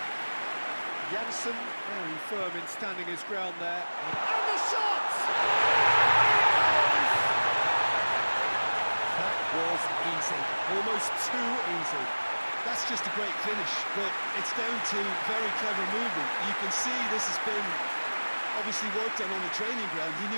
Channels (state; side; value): inverted; both; correlation -1.00